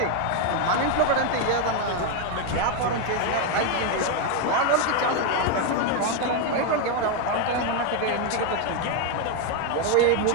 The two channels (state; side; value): different; both; correlation 0.01